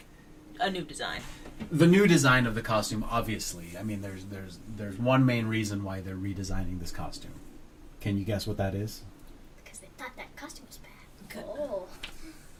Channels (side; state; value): both; identical; correlation 1.00